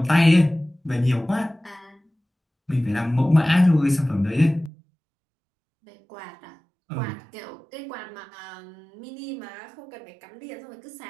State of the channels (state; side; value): drops out; left; at 4.7 s